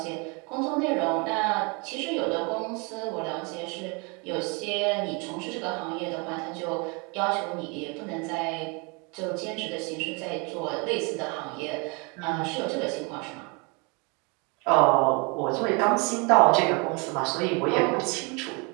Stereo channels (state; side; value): quieter; left; 31.0 dB